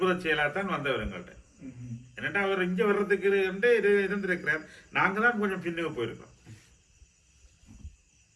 செயலாகத்தான் வந்தவர் எங்கள்கிட்ட. என்னட்டா அவர் இங்கே வர்றதுக்கு இருந்திருக்கிறார். நாங்கள் தான் கொஞ்சம் பின்னுக்கு போயிருக்கோம்.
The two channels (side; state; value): both; identical; correlation 1.00